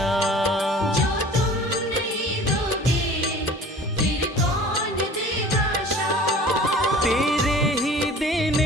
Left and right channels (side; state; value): both; normal; correlation 0.45